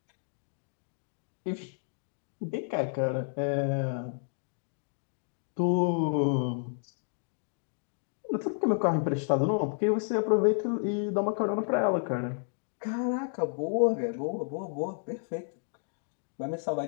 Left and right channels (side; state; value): right; silent; digital silence